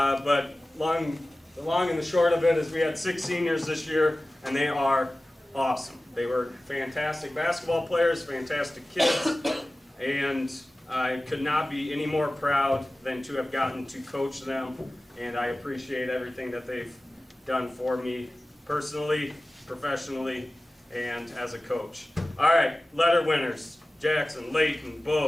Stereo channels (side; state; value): both; normal; correlation 0.97